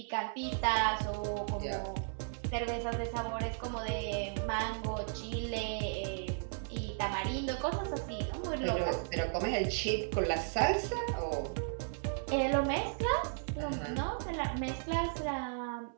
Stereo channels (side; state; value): left; silent; 54 dB below the other